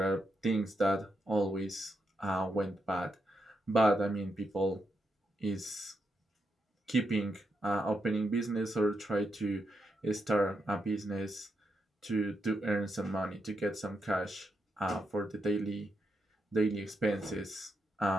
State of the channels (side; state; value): both; normal; correlation 0.83